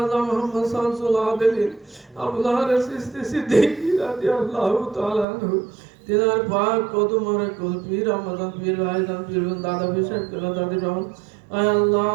মুহাম্মদ শামসুল আবেদিন আবুল হারিস চিশতি সিদ্দিকী রাদিয়াল্লাহু তাআলা আনহু তিনার পাক কদম মোবারক কুল পীর রহমান পীর ভাইজান পীর দাদা পীর সাহেব কেলা দাদি রহমান। আয় আল্লাহ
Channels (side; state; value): left; drops out; at 5.2 s